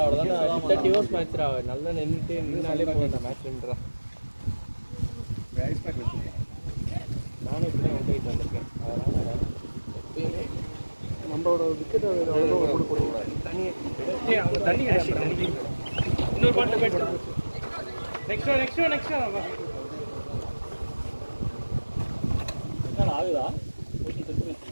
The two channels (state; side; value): inverted; both; correlation -1.00